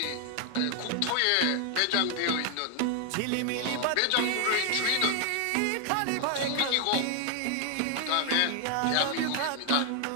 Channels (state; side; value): different; both; correlation 0.00